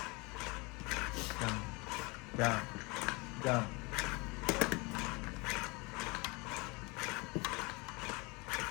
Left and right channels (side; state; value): right; quieter; 27.1 dB